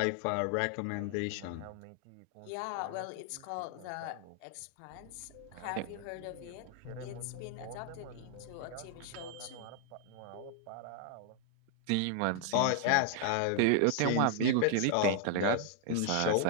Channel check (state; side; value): different; both; correlation 0.00